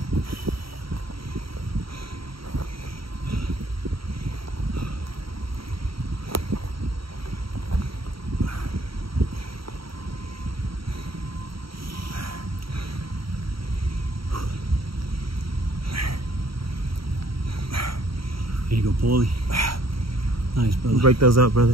Here you go, Paulie. Nice, brother. Break those up,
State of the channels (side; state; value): left; late; 0.75 ms